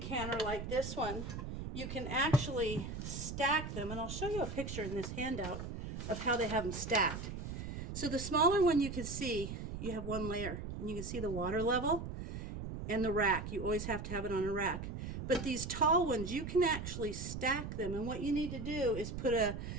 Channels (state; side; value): noise; right; rumble, 6 dB below the sound